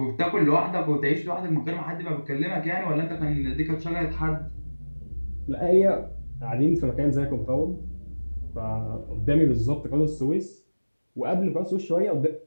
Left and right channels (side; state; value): both; inverted; correlation -1.00